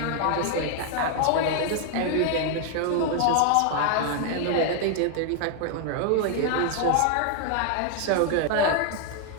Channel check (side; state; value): both; different; correlation 0.00